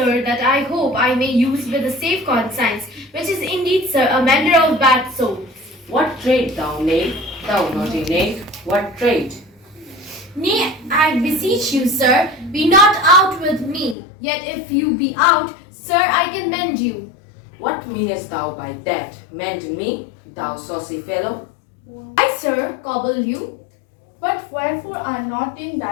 that I hope I may use with a safe conscience, which is indeed, sir, a mender of bad souls. What trade, thou knave? Thou naughty knave, what trade? Nay, I beseech you, sir, be not out with me. Yet if you be out, sir, I can mend you. What meanest thou by that? Mend me, thou saucy fellow? I, sir, cobble you. But wherefore are not in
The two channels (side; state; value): right; drops out; at 14.0 s